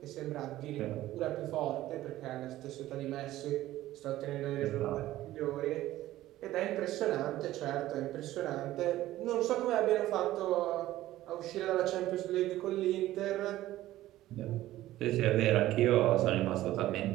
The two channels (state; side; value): quieter; left; 15.1 dB